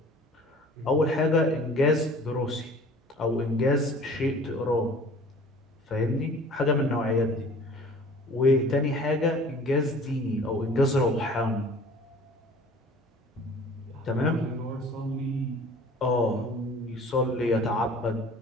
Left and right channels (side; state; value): both; normal; correlation 0.47